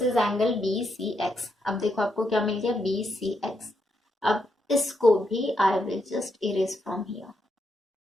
is angle BCX. अब देखो आपको क्या मिल गया? BCX. अब इसको भी I will just erase from here.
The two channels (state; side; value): normal; both; correlation 0.80